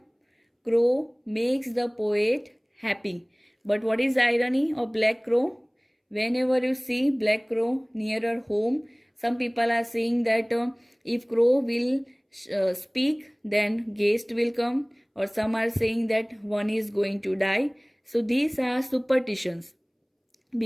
crow makes the poet happy. But what is the irony of black crow? Whenever you see black crow nearer home, some people are saying that if crow will speak, then guest will come, or some are saying that one is going to die. So these are superstitions,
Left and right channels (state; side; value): identical; both; correlation 1.00